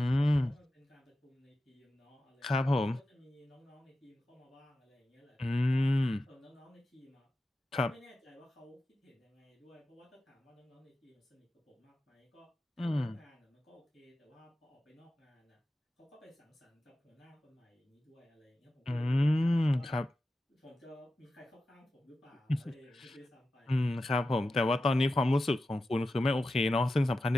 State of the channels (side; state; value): both; normal; correlation 0.92